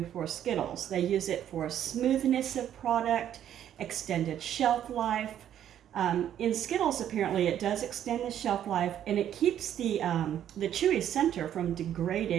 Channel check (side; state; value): left; quieter; 10.5 dB